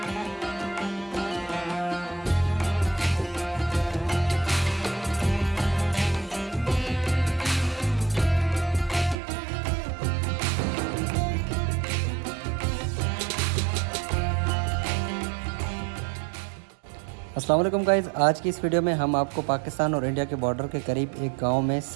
अस्सलाम वालेकुम गाइज़, आज की इस वीडियो में हम आपको पाकिस्तान और इंडिया के बॉर्डर के करीब एक गांव में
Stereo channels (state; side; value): drops out; left; at 9.2 s